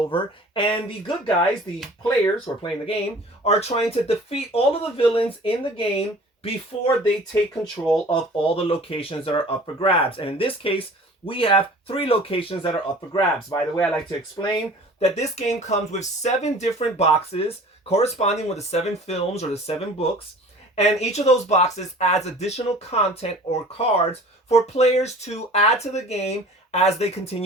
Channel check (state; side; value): normal; both; correlation 0.46